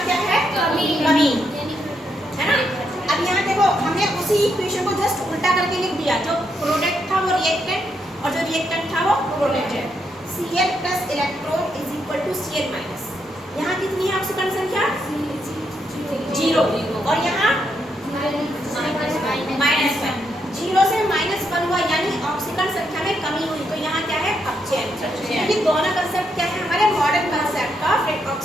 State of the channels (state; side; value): normal; both; correlation 0.79